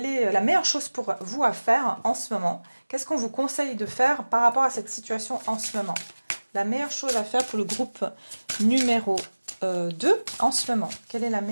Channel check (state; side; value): inverted; both; correlation -1.00